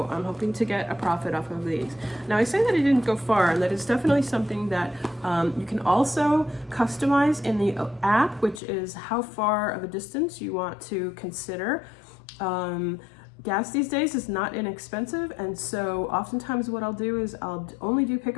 I'm hoping to get a profit off of these. Now, I say that I didn't go far, and that is definitely something that you can also customize in the app, which is how far of a distance you want to consider. Gas these days is not inexpensive, and so oftentimes what I'll do is I'll only do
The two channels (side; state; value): right; drops out; at 8.6 s